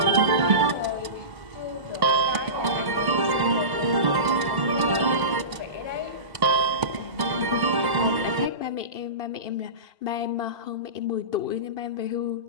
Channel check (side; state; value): left; late; 2.0 ms